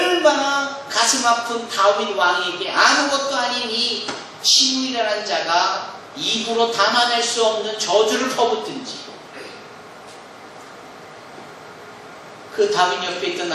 가슴 아픈 다윗 왕에게 아무것도 아닌 이 시므이라는 자가 입으로 담아낼 수 없는 저주를 퍼붓든지, 그 다윗 옆에 있던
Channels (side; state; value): both; identical; correlation 1.00